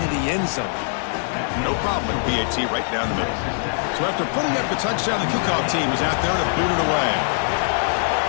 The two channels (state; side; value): silent; right; digital silence